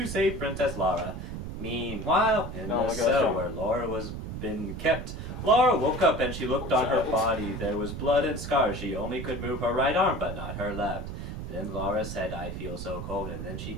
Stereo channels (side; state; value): right; noise; rumble, 7 dB below the sound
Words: save Princess Laura. Meanwhile, in the cell where Laura was been kept, Laura woke up and she looked on her body. There was blood and scars. She only could move her right arm, but not her left. Then Laura said, "I feel so cold," and then she